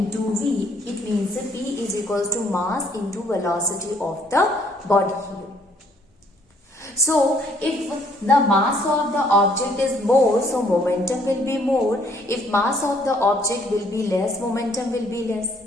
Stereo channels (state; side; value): normal; both; correlation 0.64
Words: v. It means P is equals to mass into velocity of the body here. So if the mass of the object is more, so momentum will be more. If mass of the object will be less, momentum will be less.